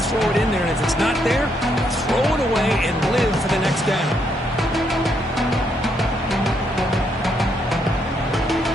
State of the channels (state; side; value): normal; both; correlation 0.75